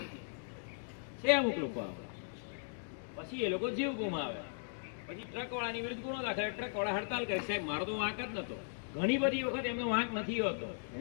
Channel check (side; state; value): right; silent; digital silence